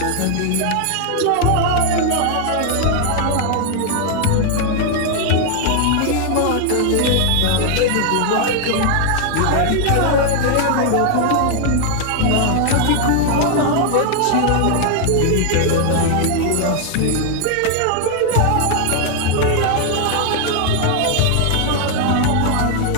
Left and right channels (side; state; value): both; different; correlation 0.00